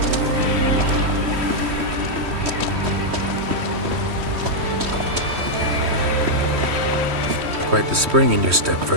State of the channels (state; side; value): late; left; 3.1 ms